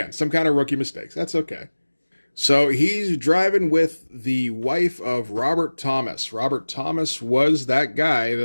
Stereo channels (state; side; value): inverted; both; correlation -1.00